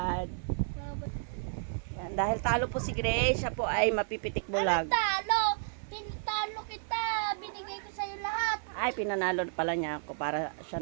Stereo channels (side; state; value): left; silent; 56 dB below the other